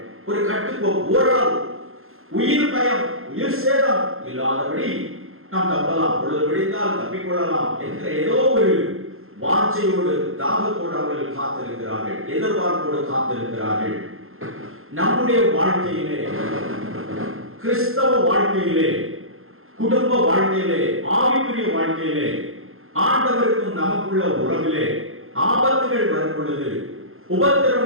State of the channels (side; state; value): left; late; 0.61 ms